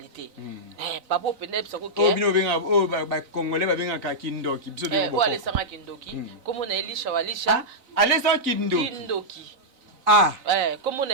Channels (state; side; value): late; left; 3.9 ms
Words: Papa peut être ça que ba congolais ba benga ka kindoki biso de ou aller sanga kindoki comme on a Elisha walisha aller sans kindoki comme on a